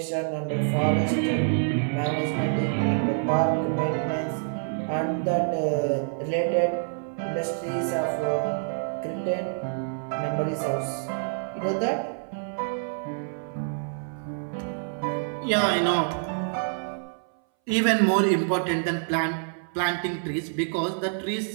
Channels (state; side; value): silent; left; 60 dB below the other